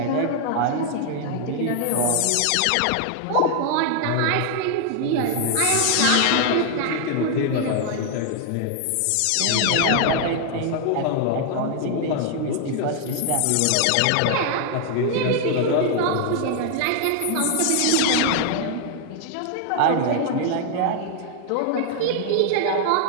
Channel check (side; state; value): both; different; correlation 0.00